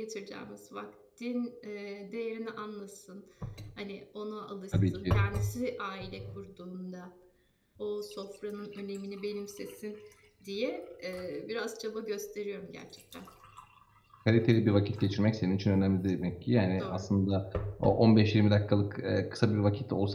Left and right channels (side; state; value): both; identical; correlation 1.00